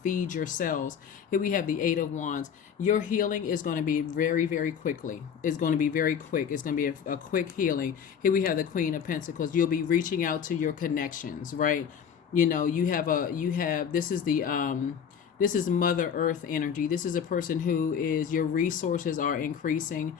your cells. Here we have the 8 of Wands. Your healing is going to be very, very quickly. It's going to be very quick. It's going to be a quick healing. Here we have the Queen of Pentacles. You'll be reaching out to your connections, right? This is Mother Earth energy. This is a person who is, your resources are increasing,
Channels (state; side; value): quieter; right; 7.7 dB